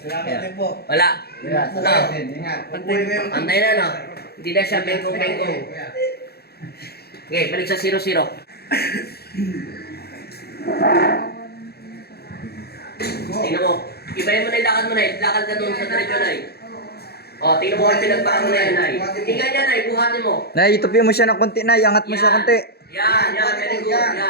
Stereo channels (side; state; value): right; late; 0.46 ms